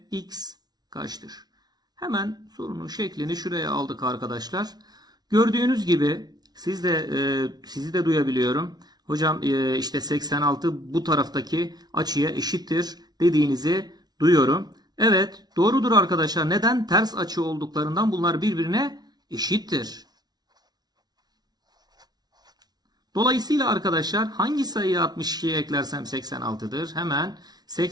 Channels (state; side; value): late; left; 0.19 ms